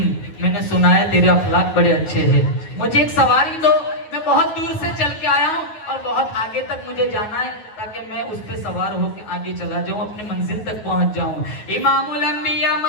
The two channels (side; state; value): right; late; 9.4 ms